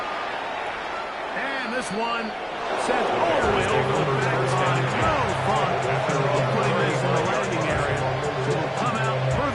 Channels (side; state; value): both; identical; correlation 1.00